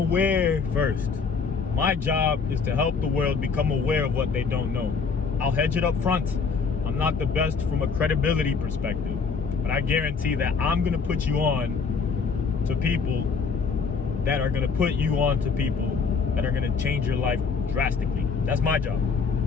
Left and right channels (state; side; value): quieter; right; 5.2 dB